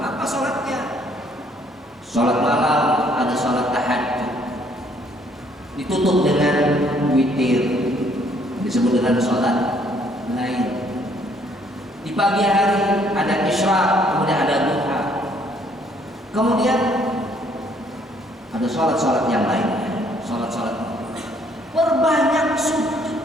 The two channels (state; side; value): normal; both; correlation 0.65